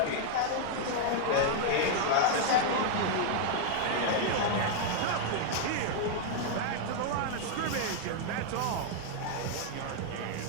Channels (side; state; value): both; different; correlation 0.00